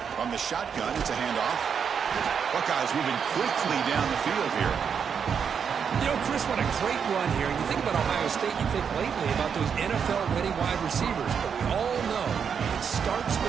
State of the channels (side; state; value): left; quieter; 7.0 dB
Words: From the shotgun, it's a handoff. Buckeyes moving quickly down the field here. You know, Chris, what a great run here. You think about Ohio State, you think lately about those NFL-ready wide receivers. But we all know it starts